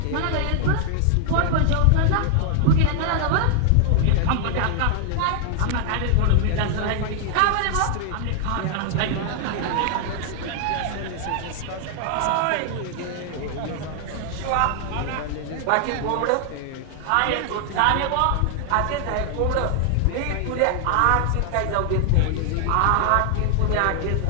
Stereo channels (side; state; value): both; different; correlation 0.00